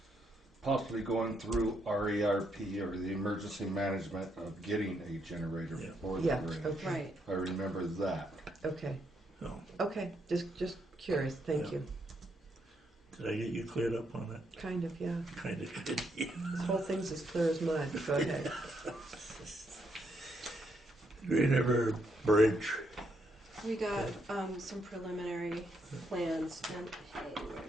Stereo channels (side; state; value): both; normal; correlation 0.76